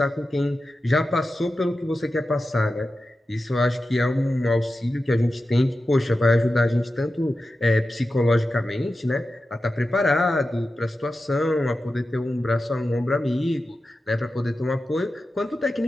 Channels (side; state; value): both; normal; correlation 0.92